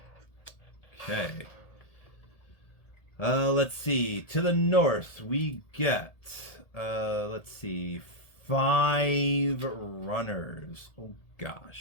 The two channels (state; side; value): late; right; 1.8 ms